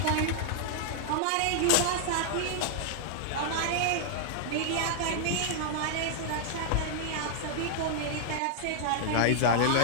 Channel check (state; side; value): different; both; correlation -0.01